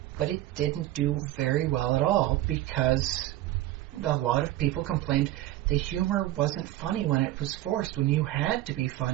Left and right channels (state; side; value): quieter; left; 15.0 dB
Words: But it didn't do very well at all because a lot of people complained the humor wasn't funny when it was forced, when you had to be